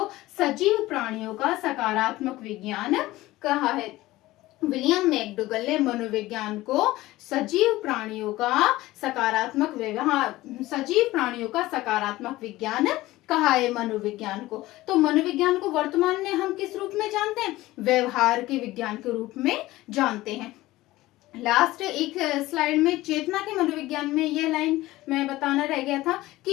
सजीव प्राणियों का सकारात्मक विज्ञान कहा है। विलियम मैकडूगल ने मनोविज्ञान को सजीव प्राणियों का सकारात्मक विज्ञान कहा है मनोविज्ञान को। तो मनोविज्ञान को वर्तमान में हम किस रूप में जानते हैं? व्यवहार के विज्ञान के रूप में जानते हैं। लास्ट एक स्लाइड में चेतना के मनोविज्ञान में यह लाइन मैं बताना रह गया था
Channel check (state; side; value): quieter; right; 17.6 dB